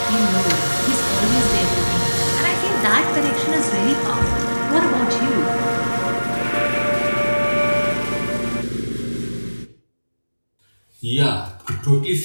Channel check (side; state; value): both; inverted; correlation -1.00